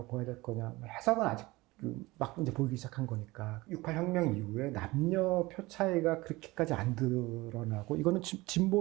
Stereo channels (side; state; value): left; quieter; 21.0 dB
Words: 봐야 될 거냐 해석은 아직 막 이제 보이기 시작한 거니까 68 혁명 이후에 남녀 표 차이가 그렇게까지 안 드러나고 이거는